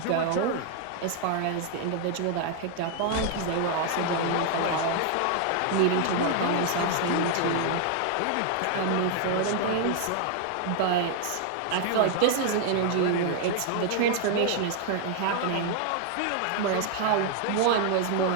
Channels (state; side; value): different; both; correlation 0.00